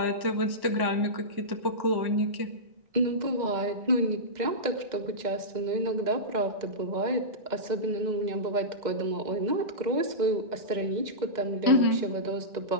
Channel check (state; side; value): late; left; 2.0 ms